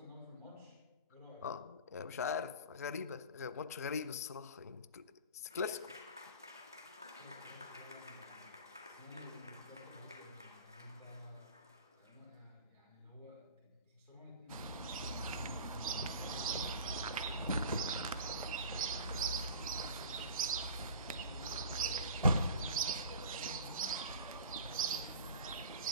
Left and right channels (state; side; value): inverted; both; correlation -0.40